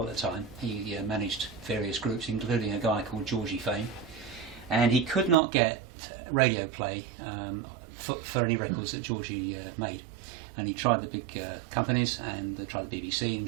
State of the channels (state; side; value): drops out; left; at 5.4 s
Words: at the time. He managed various groups, including a guy called Georgie Fame, and he could not get radio play for any records that Georgie made. And he tried the big companies, and they tried the BBC, and he